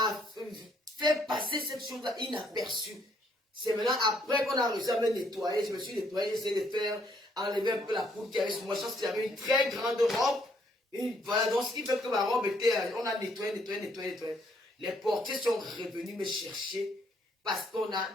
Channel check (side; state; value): both; normal; correlation 0.69